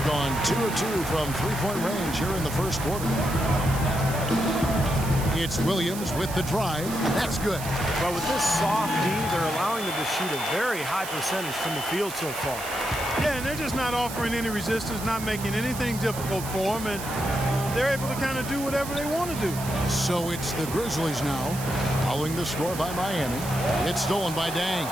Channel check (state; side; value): noise; right; hiss, 10 dB below the sound